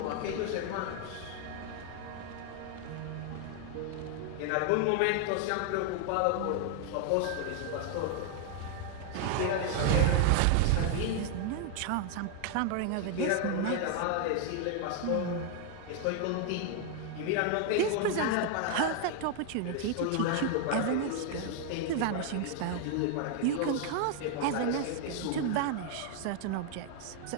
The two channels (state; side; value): different; both; correlation 0.00